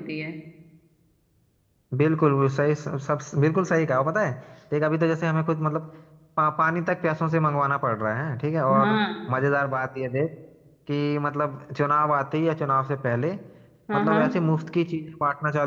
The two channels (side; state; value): both; identical; correlation 1.00